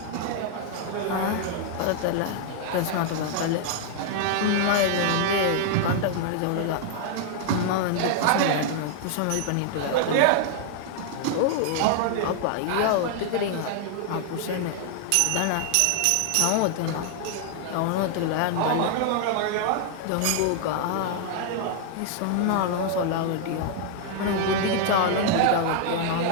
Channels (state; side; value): different; both; correlation 0.00